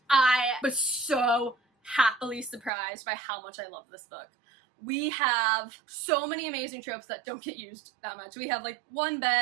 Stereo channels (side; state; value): left; drops out; at 2.7 s